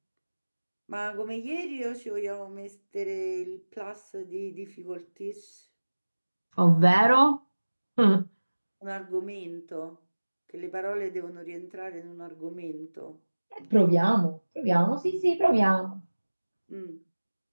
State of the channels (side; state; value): both; inverted; correlation -1.00